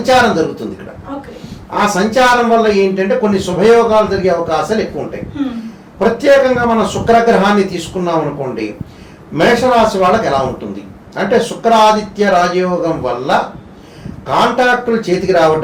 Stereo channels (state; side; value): identical; both; correlation 1.00